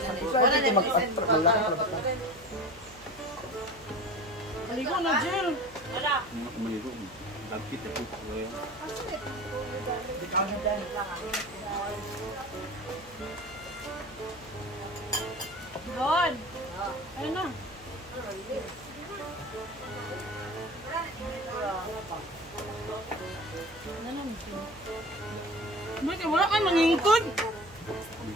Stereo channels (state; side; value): noise; right; hum, 23 dB below the sound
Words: Wala na mag-malaki. Maligo na, Jill! Wala! Maligo. Dagkit ako ko yan. Doon! Ayun na! Bakit wala kayo mangingkod?